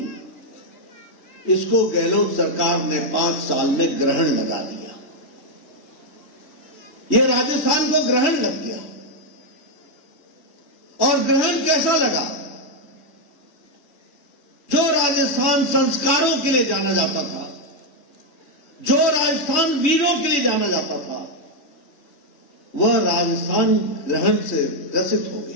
इसको गहलोत सरकार ने 5 साल में ग्रहण लगा दिया। ये राजस्थान को ग्रहण लग गया। और ग्रहण कैसा लगा? जो राजस्थान संस्कारों के लिए जाना जाता था, जो राजस्थान वीरों के लिए जाना जाता था, वह राजस्थान ग्रहण से ग्रसित हो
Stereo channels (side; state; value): right; late; 3.5 ms